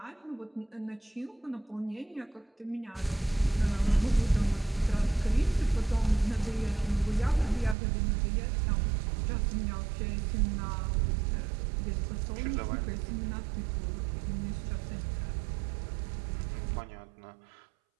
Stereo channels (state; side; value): drops out; left; at 7.8 s